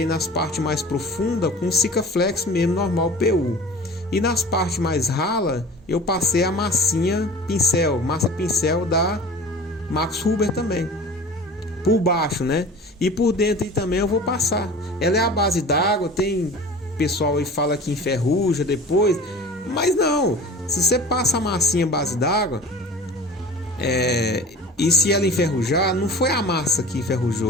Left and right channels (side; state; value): both; normal; correlation 0.40